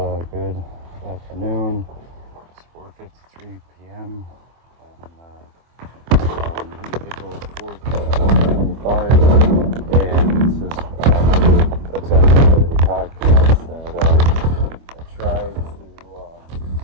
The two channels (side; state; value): left; late; 25 ms